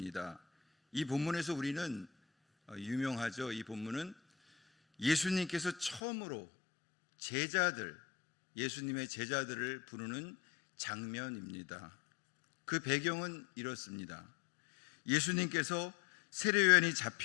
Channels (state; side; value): drops out; right; at 6.0 s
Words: 이 본문에서 우리는 유명하죠. 이 본문은 예수님께서 처음으로 예수님의 제자들을 부르는 장면입니다. 그 배경은 이렇습니다. 예수님께서 세례요한이